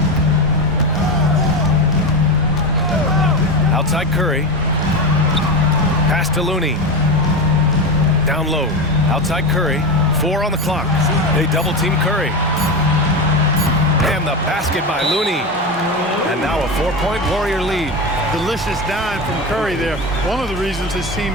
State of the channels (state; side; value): normal; both; correlation 0.19